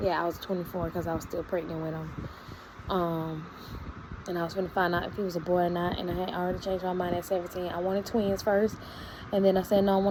Yeah, I was 24 because I was still pregnant with him. And I was going to find out if he was a boy or not, and I had already changed my mind at 17. I wanted twins first, and then I said, no, I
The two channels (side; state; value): both; identical; correlation 1.00